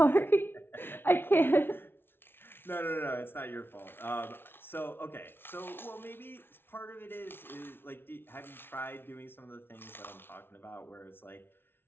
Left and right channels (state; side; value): late; right; 0.11 ms